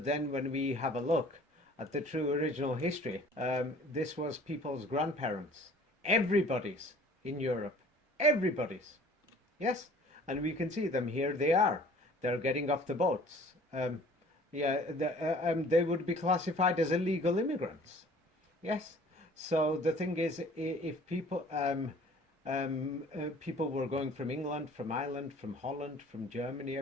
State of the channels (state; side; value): normal; both; correlation 0.50